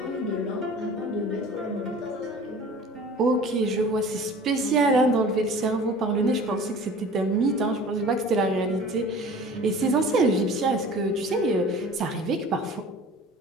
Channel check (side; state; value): both; normal; correlation 0.43